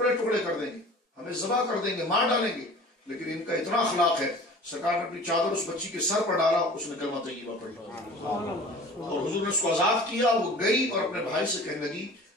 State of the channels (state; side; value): normal; both; correlation 0.43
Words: ٹکڑے کر دیں گے، ہمیں ذبح کر دیں گے، مار ڈالیں گے، لیکن ان کا اتنا اخلاق ہے. سرکار نے اپنی چادر اس بچی کے سر پر ڈالا، اس نے کلمہ طیبہ پڑھی اور حضور نے اس کو آزاد کیا. وہ گئی اور اپنے بھائی سے کہنے لگی